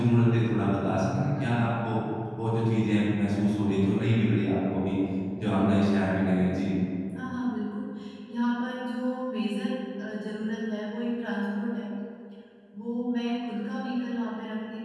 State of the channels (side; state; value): both; identical; correlation 1.00